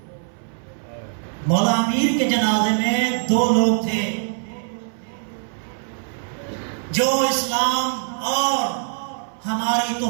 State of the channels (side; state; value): left; silent; 59 dB below the other